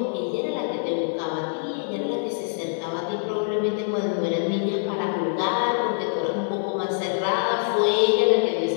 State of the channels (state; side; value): silent; right; 57 dB below the other